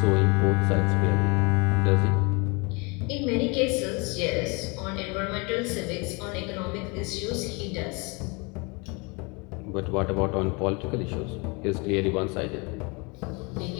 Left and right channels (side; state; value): right; quieter; 29.4 dB